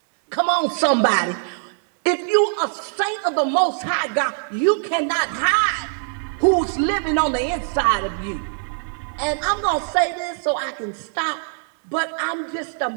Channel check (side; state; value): left; silent; 59 dB below the other